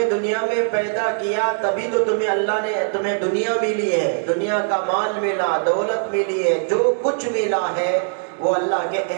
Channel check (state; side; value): silent; left; 63 dB below the other